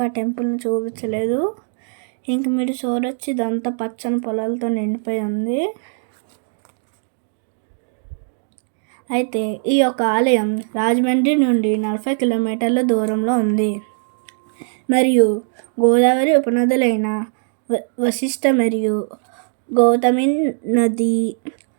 ఆ టెంపుల్ని చూపించలేదు. ఇంక మీరు చూడొచ్చు, ఇదంతా పచ్చని పొలాలతో నిండిపోయి ఉంది. అయితే ఈ యొక్క ఆలయం రాజమండ్రి నుండి 40 కిలోమీటర్ల దూరంలో ఉంది. మరియు గోదావరి ఉపనదులైన వశిష్ఠ మరియు గౌతమి నది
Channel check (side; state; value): left; silent; digital silence